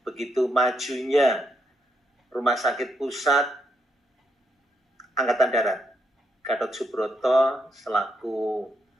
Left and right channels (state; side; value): normal; both; correlation 0.78